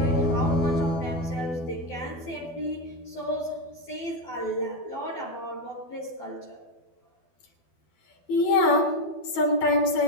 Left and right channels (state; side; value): late; right; 12 ms